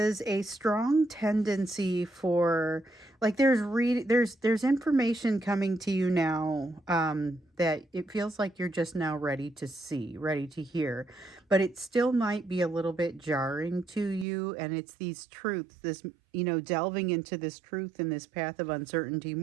a strong tendency for, like, there's information coming to you now, that it feels like you're just now ready to see, ready to hear, but it still might be a little bit jarring to you. And it's these truths, this, delving into this truth and this path of uncertainty,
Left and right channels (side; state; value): left; drops out; at 14.2 s